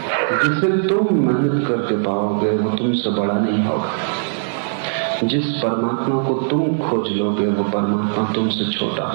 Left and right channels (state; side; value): silent; left; digital silence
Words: जिसे तुम मेहनत करके पाओगे वो तुमसे बड़ा नहीं होगा। जिस परमात्मा को तुम खोज लोगे वो परमात्मा तुमसे छोटा